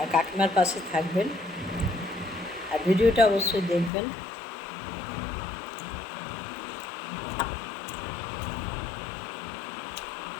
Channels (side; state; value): right; drops out; at 3.9 s